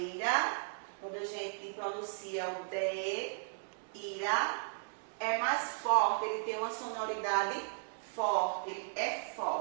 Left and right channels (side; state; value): left; silent; digital silence